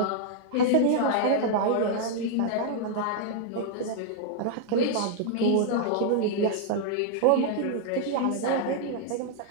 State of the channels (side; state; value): both; different; correlation -0.01